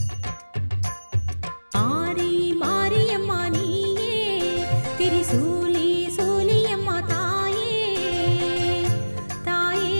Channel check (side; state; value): both; inverted; correlation -1.00